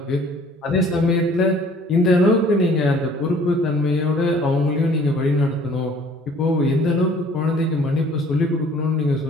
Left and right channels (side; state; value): both; normal; correlation 0.54